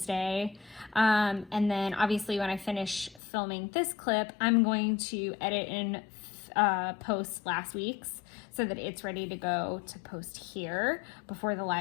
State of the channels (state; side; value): drops out; right; at 3.2 s